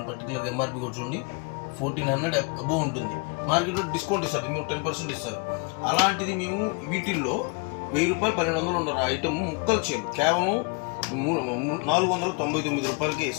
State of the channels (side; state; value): right; quieter; 33.2 dB